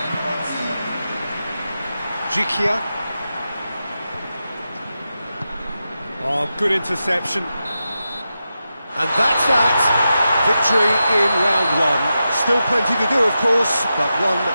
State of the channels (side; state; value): both; inverted; correlation -0.90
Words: Jikia. Oh, good interception. And that's that. Victory in round one. Still plenty to do, of course, but one